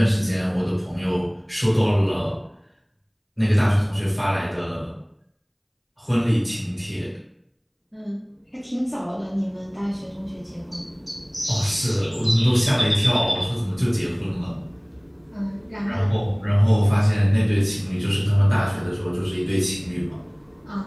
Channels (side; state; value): both; identical; correlation 1.00